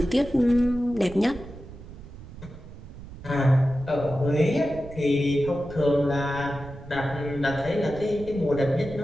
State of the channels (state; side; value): noise; right; rumble, 15 dB below the sound